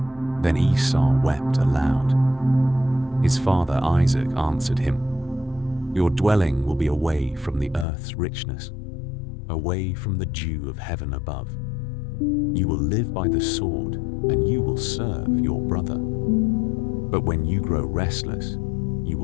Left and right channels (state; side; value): drops out; right; at 7.9 s